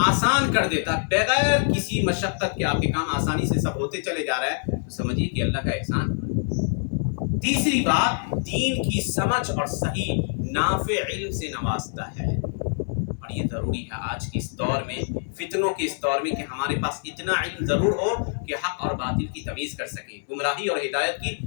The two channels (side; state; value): right; silent; digital silence